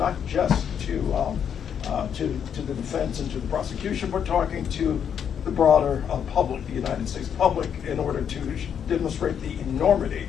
just to the defense and to the prosecution, but talking to the broader public, the United States public, in order to demonstrate the enormity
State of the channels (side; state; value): right; quieter; 8.1 dB